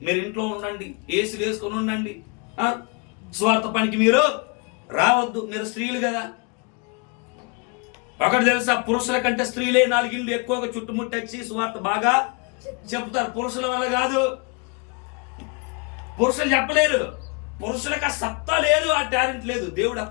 మీరు ఇంట్లో ఉండండి, ఏసులు వేసుకొని ఉండండి, స్వార్థ పనికి మీరు రావద్దు, మీరు స్త్రీలు కదా. ఒకటి తెలుసా? పురుషుల కంటే స్త్రీలే 4 ఇళ్ళు ఎక్కువగా చుట్టుముట్టచ్చి స్వార్థ బాగా చెప్తారు. పురుషుల వల్ల కాదు. పురుషులు చెప్పలేరు. పురుషులకు ఆ సత్తా లేదు, ఆ టాలెంట్ లేదు. దేవుడు ఆ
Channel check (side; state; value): right; quieter; 33.3 dB